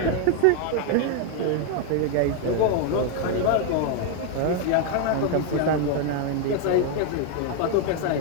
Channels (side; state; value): both; different; correlation 0.00